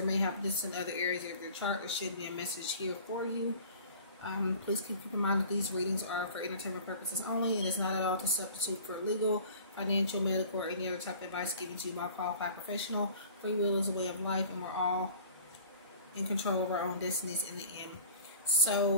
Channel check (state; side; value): inverted; both; correlation -0.44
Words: may have this in other areas of your chart, there should be a message here for you. Please keep in mind that these readings are for entertainment purposes only and is not at all to substitute for legal, financial, medical, or any other type of advice given to you by a qualified professional. Free will is a way of life, and we're all in control of our own destinies in the end.